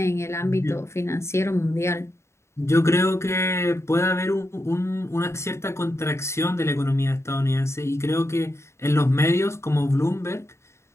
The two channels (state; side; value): late; right; 0.13 ms